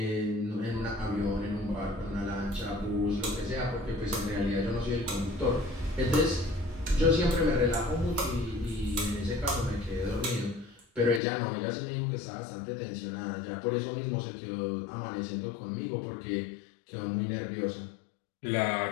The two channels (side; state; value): right; drops out; at 11.2 s